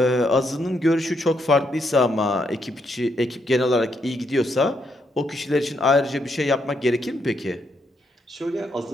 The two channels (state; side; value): normal; both; correlation 0.77